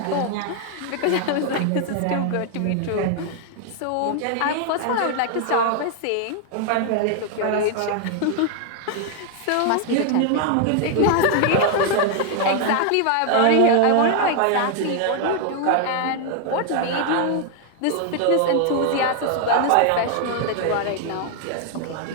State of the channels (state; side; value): different; both; correlation 0.00